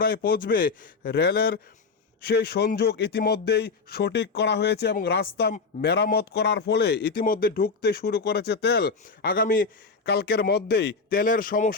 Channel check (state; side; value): quieter; right; 4.5 dB